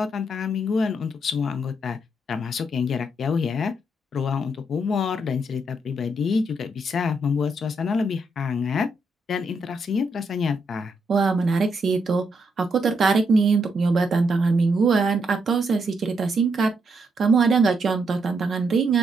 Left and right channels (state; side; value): normal; both; correlation 0.78